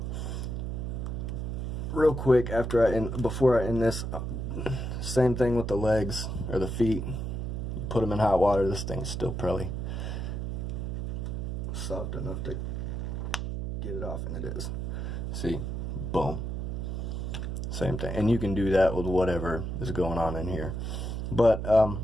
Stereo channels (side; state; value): right; noise; hum, 3 dB below the sound